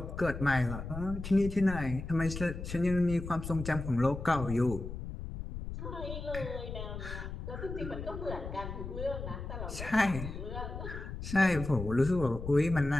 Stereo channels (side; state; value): left; noise; rumble, 8 dB below the sound